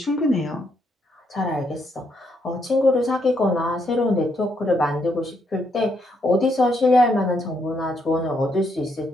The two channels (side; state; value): both; normal; correlation 0.76